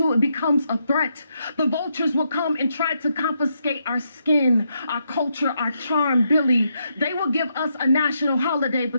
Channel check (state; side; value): inverted; both; correlation -0.80